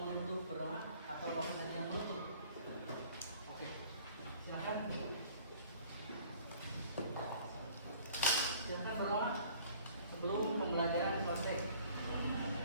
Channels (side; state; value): both; inverted; correlation -0.53